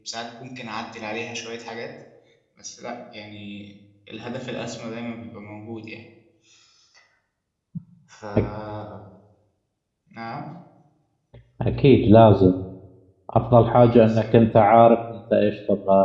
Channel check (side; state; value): both; identical; correlation 1.00